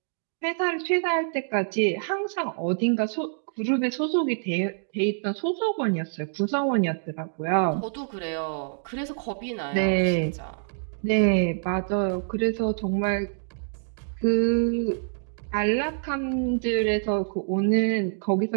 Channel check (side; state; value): left; silent; digital silence